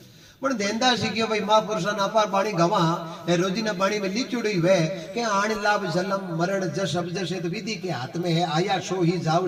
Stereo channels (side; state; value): both; identical; correlation 1.00